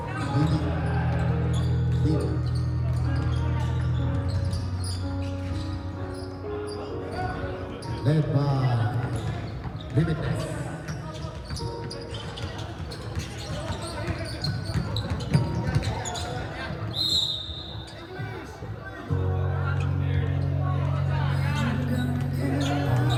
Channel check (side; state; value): both; identical; correlation 1.00